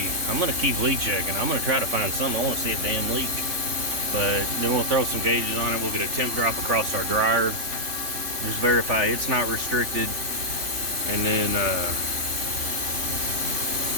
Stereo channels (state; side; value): late; left; 3.3 ms